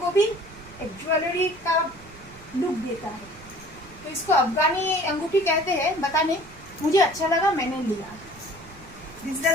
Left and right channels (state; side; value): noise; right; rumble, 21 dB below the sound